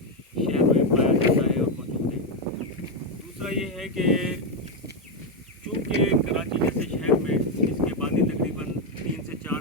में पाया जाता है और मौजूद है। दूसरा ये है कि चूँकि कराची जैसे शहर में इसकी आबादी तकरीबन 3 से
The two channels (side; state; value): both; normal; correlation 0.05